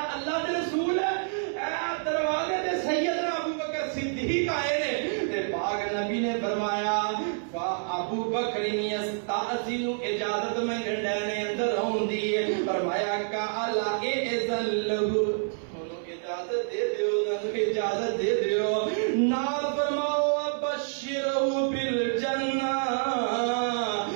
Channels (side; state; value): left; silent; 59 dB below the other